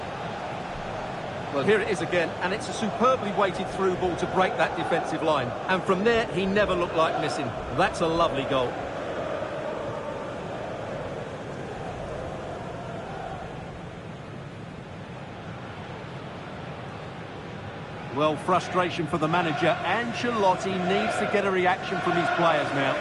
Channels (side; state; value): both; identical; correlation 1.00